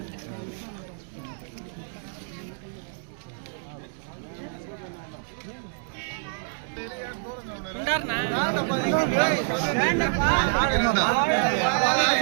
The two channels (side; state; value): left; silent; digital silence